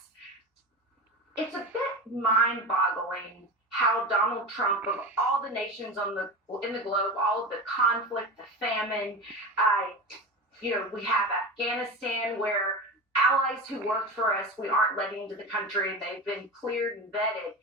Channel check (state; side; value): normal; both; correlation 0.27